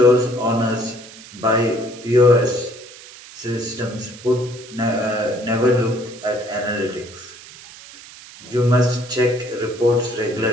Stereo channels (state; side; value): noise; right; hiss, 18 dB below the sound